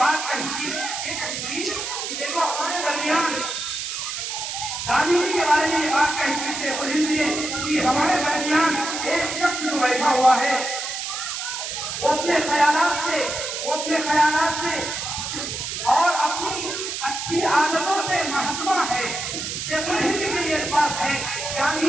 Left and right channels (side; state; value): right; noise; hiss, 4 dB below the sound